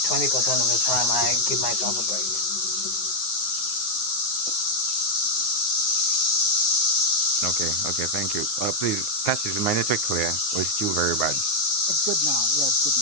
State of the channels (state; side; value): late; right; 9.5 ms